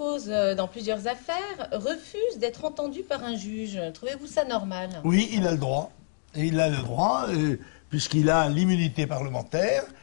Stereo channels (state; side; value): silent; right; digital silence